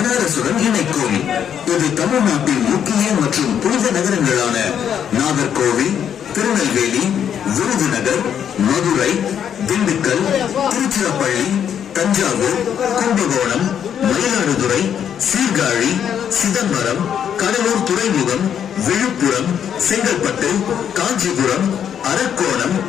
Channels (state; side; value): quieter; right; 8.8 dB